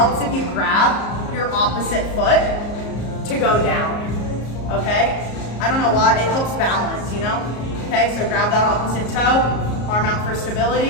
if you grab your opposite foot to go down, okay? I don't know why, it helps balance, you know? Okay, so grab that opposite toe, arm out for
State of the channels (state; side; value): late; right; 34 ms